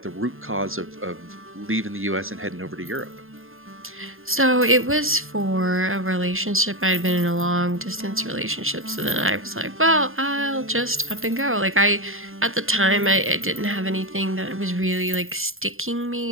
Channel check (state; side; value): late; left; 0.60 ms